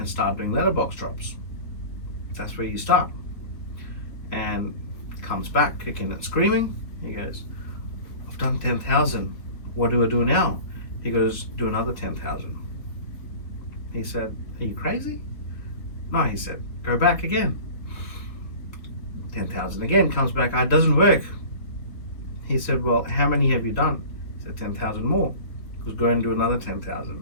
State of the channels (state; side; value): late; right; 3.6 ms